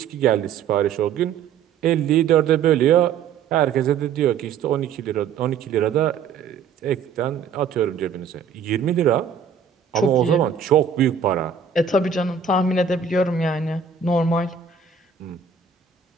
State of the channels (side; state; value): left; quieter; 6.7 dB